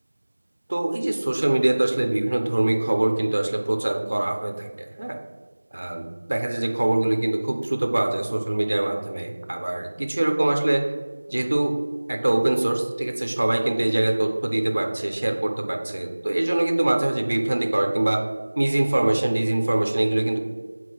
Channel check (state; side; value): inverted; both; correlation -1.00